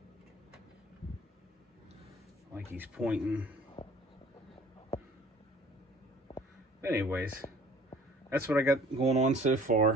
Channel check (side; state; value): both; normal; correlation 0.51